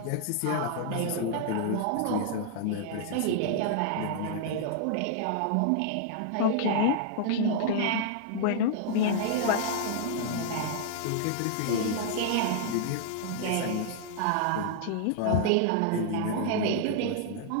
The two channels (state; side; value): different; both; correlation -0.01